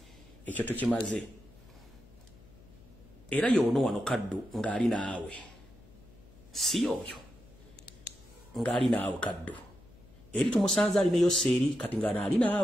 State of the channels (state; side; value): noise; left; hum, 24 dB below the sound